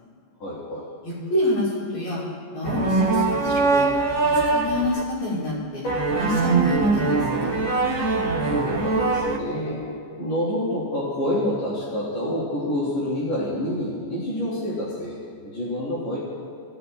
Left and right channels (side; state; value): right; late; 14 ms